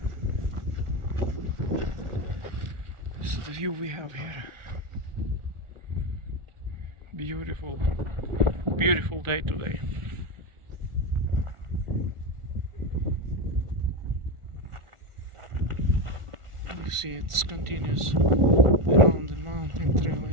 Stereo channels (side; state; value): left; late; 1.4 ms